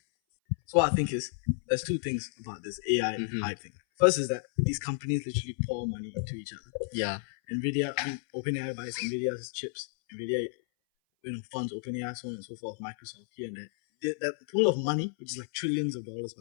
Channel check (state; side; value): silent; right; 57 dB below the other